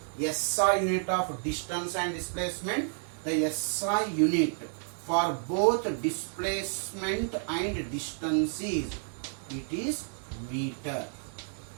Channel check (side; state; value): left; silent; 57 dB below the other